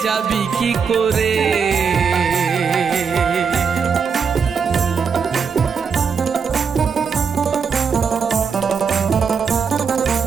যাবি কি করে।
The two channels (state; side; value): quieter; left; 6.1 dB